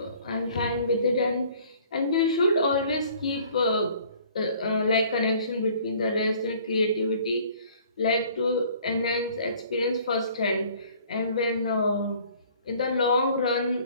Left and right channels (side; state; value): both; inverted; correlation -0.54